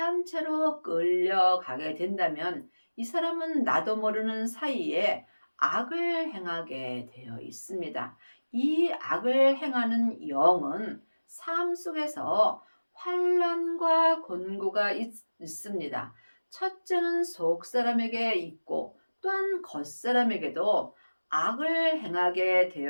끌려가게 된다면 이 사람은 나도 모르는 사이에 악을 행하게 되어 있습니다. 이 악을 행하는 영은 삶 속에서 환난과 곤고가 있습니다. 첫째는 속 사람에게 있고 또한 겉 사람에게도 악을 행하게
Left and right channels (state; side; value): inverted; both; correlation -1.00